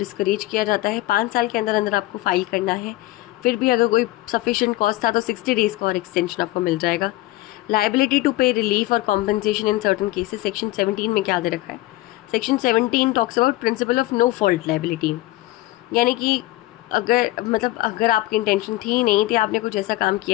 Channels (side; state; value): right; quieter; 17.9 dB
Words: किया जाता है, 5 साल के अंदर अंदर आपको फाइल करना है। फिर भी अगर कोई सफिशिएंट कॉस्ट था तो 60 डेज़ का और एक्सटेंशन आपको मिल जाएगा। लायबिलिटी टू पे रिलीफ और compensation in certain cases, section 17 में क्या दे रखा है, section 17 talks about principle of no fault liability, यानी कि अगर आपकी इंटेंशन थी नहीं थी, आपने कुछ ऐसा काम